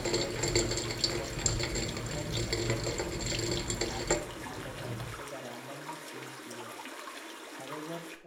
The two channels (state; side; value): identical; both; correlation 1.00